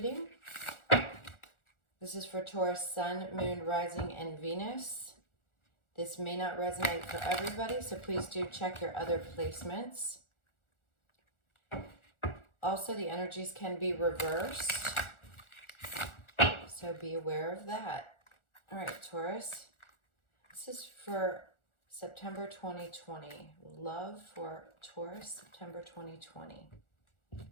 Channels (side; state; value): right; late; 1.4 ms